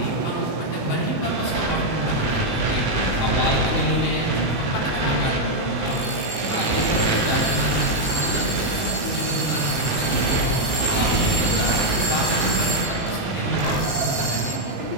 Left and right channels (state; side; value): late; right; 19 ms